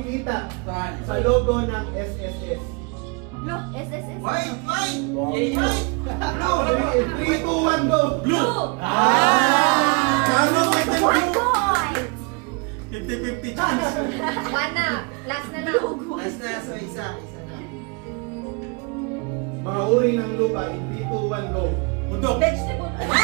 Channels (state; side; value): quieter; left; 31.8 dB